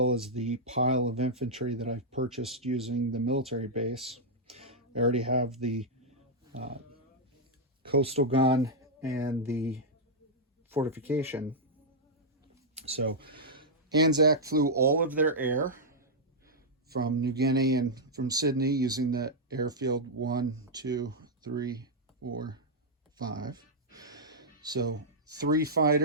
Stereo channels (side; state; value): both; normal; correlation -0.06